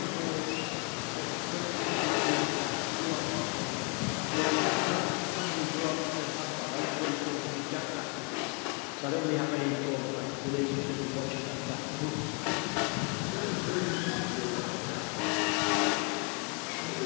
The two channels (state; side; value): quieter; right; 35.4 dB